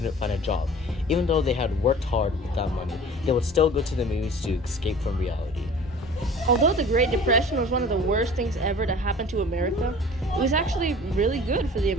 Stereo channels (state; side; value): normal; both; correlation 0.44